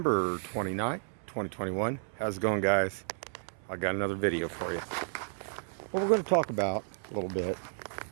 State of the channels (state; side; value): silent; left; 56 dB below the other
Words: 29th, 2021. How's it going, guys? I got another video for you. What we're going to talk about a little bit.